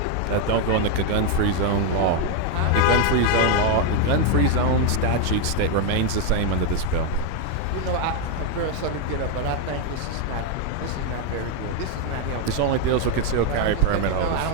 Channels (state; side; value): different; both; correlation 0.01